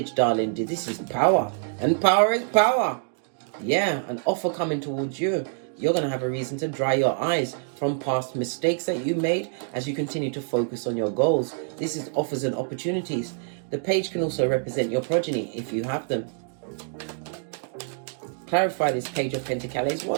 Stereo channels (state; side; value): silent; left; digital silence